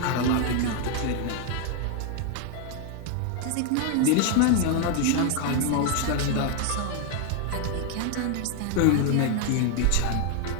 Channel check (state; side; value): different; both; correlation 0.01